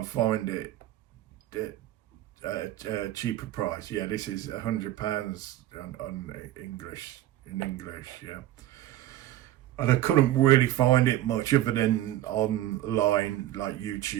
find it. cheaper price. Yeah, this is £100 on English, in English, yeah. And I couldn't really find it much other than online, like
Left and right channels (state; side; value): quieter; left; 13.8 dB